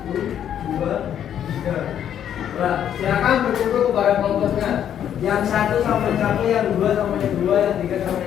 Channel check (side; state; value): right; quieter; 9.8 dB